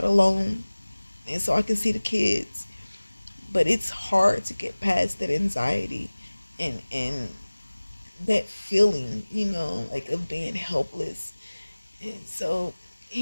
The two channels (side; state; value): both; inverted; correlation -1.00